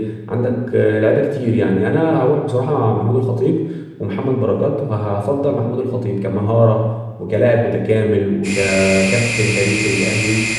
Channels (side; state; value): both; identical; correlation 1.00